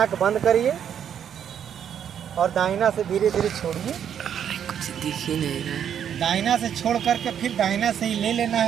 बंद करिए, और दाहिना से धीरे धीरे छोड़िए। कुछ दिख ही नहीं रहा है। दाहिना से छोड़ करके फिर दाहिना से ही ले लेना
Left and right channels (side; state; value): left; quieter; 8.9 dB